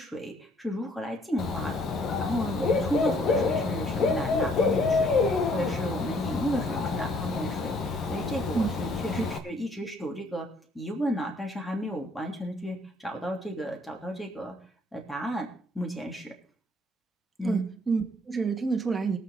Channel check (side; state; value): both; normal; correlation 0.63